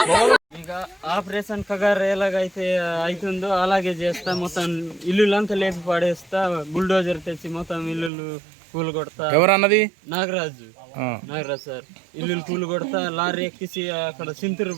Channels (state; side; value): drops out; left; at 8.1 s